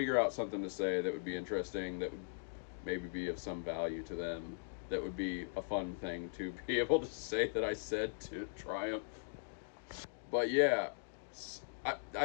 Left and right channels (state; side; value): silent; right; digital silence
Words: out something to say that would be interesting, that would maybe be of some value to them, that would be a fun thing to be able to say that I said to Triumph. But yeah,